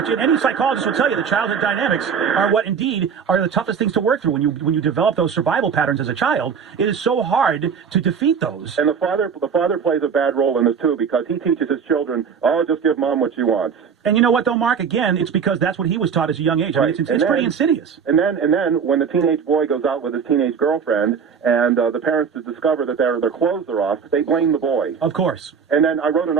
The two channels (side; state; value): left; quieter; 6.7 dB